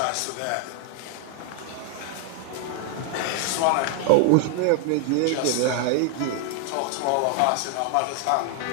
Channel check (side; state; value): both; different; correlation 0.00